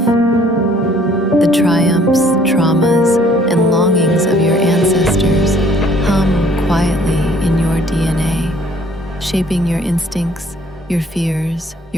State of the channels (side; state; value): both; normal; correlation 0.59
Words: The triumphs, traumas, and longings of your ancestors hum quietly in your DNA, shaping your instincts, your fears,